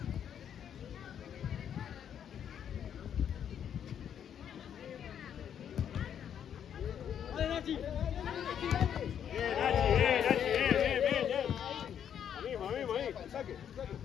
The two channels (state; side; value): quieter; right; 8.9 dB